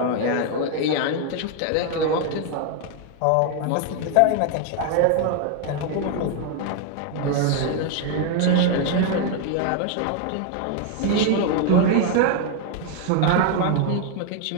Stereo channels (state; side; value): different; both; correlation 0.00